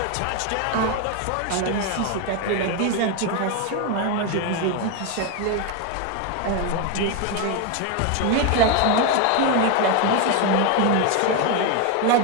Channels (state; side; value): different; both; correlation 0.02